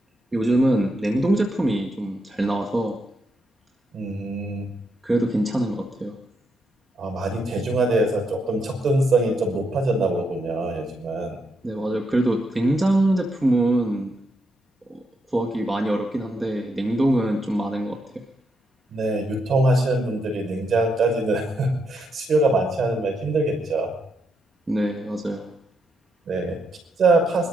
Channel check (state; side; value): normal; both; correlation 0.80